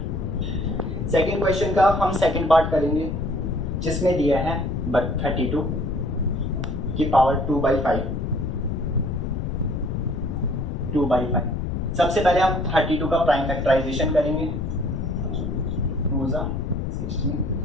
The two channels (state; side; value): noise; left; rumble, 2 dB below the sound